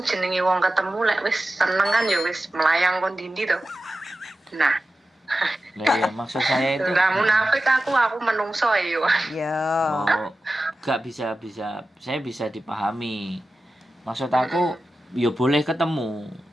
jenenge wong ketemu lek wis seneng kan ya wis melayang kon dindi to. Nah. Ya, maksud saya itu enggak munafik aku menungso ya. Ya. Oh, gak bisa saya bisa dipahami. Maksud aku ya boleh ketemu,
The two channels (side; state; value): both; normal; correlation 0.93